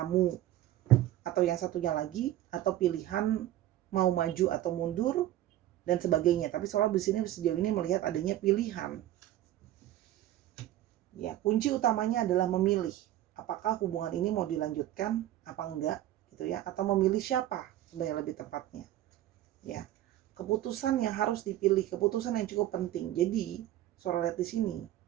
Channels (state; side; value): quieter; left; 13.6 dB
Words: atau yang satunya lagi, atau pilihan mau maju atau mundur dan sebagainya. Tapi soal di sini sejauh ini melihat adanya pilihan. Ya, kunci utamanya adalah memilih apakah hubungan ini mau dilanjutkan apa enggak gitu ya, atau memilih siapa sebenarnya lebih tepatnya. Ya. Keputusan yang harus dipilih, keputusan yang cukup penting. Jadi, Sora lihat di sini